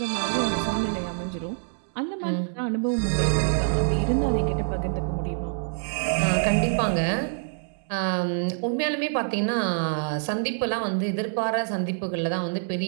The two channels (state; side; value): silent; left; digital silence